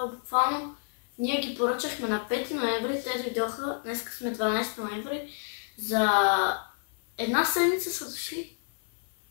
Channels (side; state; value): right; silent; 58 dB below the other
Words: буквално ние ги поръчахме на 5 ноември, те дойдоха, днес сме 12 ноември, за една седмица са дошли.